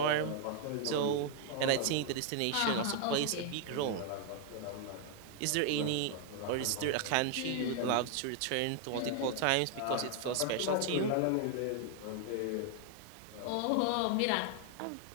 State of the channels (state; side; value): different; both; correlation 0.00